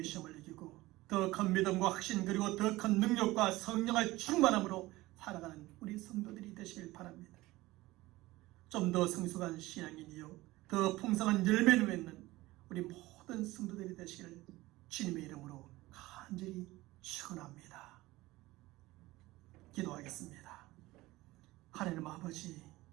시험을 이기고 더 큰 믿음과 확신 그리고 더 큰 능력과 성령의 충만함으로 살아가는 우리 성도들이 되시길 바랍니다. 좀 더 성숙한 신앙인이요 더 풍성한 열매를 맺는 우리 모든 성도들이 되시기를 주님의 이름으로 간절히 축원합니다. 기도하겠습니다. 하나님 아버지,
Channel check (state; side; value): quieter; left; 18.9 dB